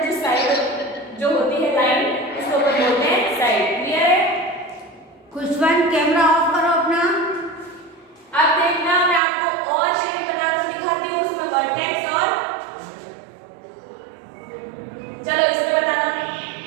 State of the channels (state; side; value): drops out; left; at 9.2 s